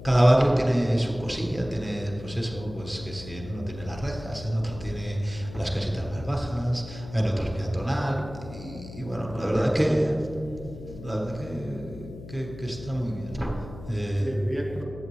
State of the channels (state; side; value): noise; left; hum, 14 dB below the sound